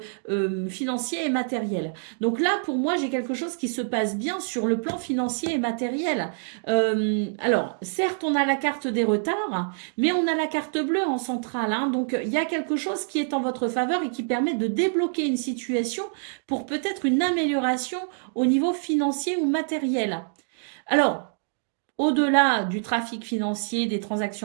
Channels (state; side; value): silent; left; digital silence